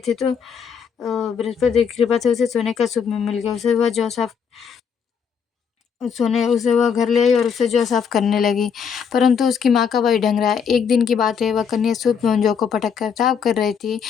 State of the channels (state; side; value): quieter; right; 6.8 dB